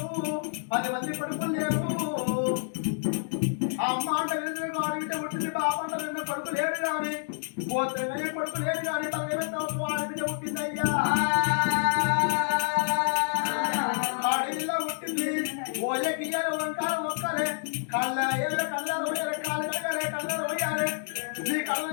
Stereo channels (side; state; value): right; silent; 59 dB below the other